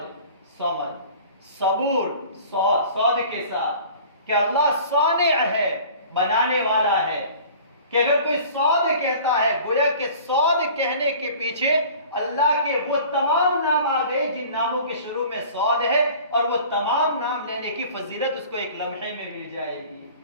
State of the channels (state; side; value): inverted; both; correlation -0.45